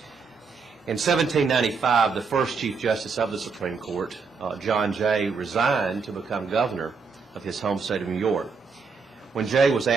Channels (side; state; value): left; quieter; 5.1 dB